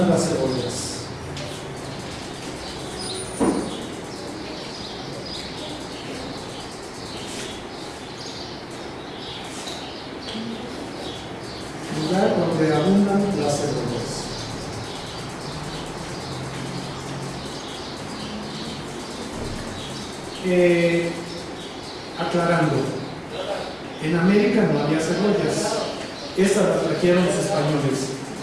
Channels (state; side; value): identical; both; correlation 1.00